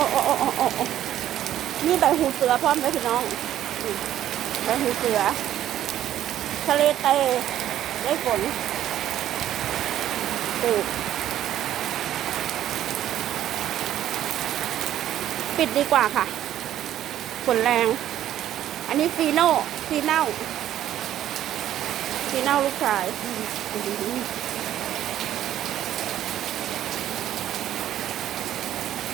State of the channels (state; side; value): quieter; left; 11.9 dB